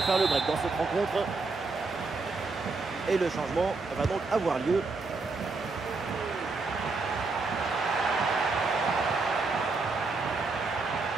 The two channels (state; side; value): quieter; left; 3.9 dB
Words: faire le break dans cette rencontre. Et le changement va donc avoir lieu.